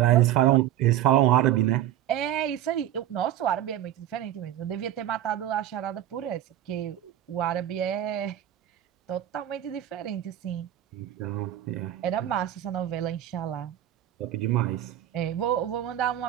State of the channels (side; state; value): left; quieter; 12.0 dB